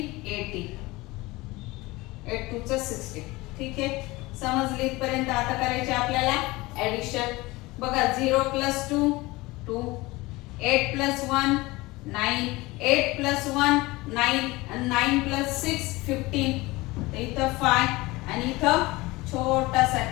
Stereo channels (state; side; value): quieter; right; 21.3 dB